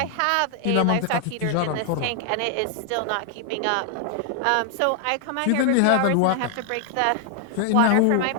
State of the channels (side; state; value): both; different; correlation 0.00